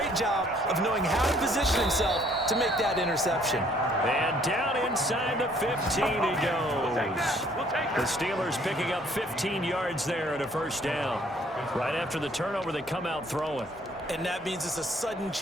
job of knowing how to position himself to make that interception. And down inside the 15 he goes. The Steelers picking up 15 yards there at a first down. Right after the turnover, they come out throwing. And that means it's a sudden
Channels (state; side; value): normal; both; correlation 0.61